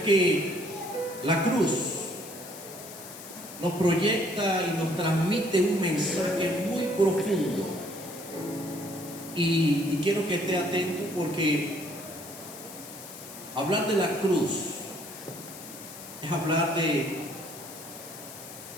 que la cruz nos proyecta y nos transmite un mensaje muy profundo. Y quiero que esté atento, porque hablar de la cruz es hablar de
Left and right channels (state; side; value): noise; left; hiss, 14 dB below the sound